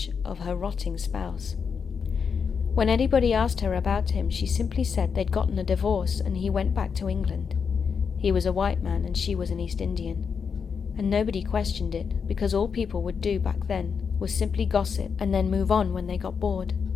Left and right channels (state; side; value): quieter; right; 6.2 dB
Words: of her rotting spouse. When anybody asked her about him, she simply said they'd gotten a divorce and he went back to England. He was a white man and she was an East Indian. And nobody questioned it, because all people would do back then was simply gossip and then move on when they got bored.